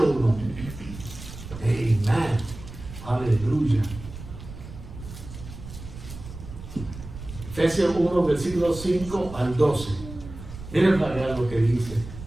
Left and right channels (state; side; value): noise; right; rumble, 13 dB below the sound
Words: 1. Amén. Aleluya. Efesios 1, versículos 5 al 12. Miren para ver lo que dice.